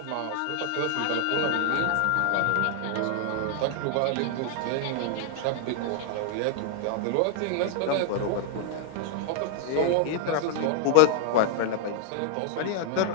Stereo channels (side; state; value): both; different; correlation 0.00